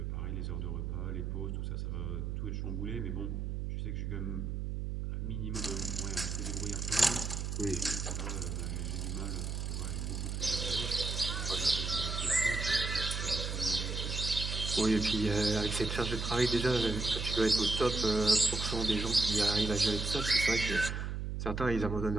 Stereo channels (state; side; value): noise; right; hum, 3 dB below the sound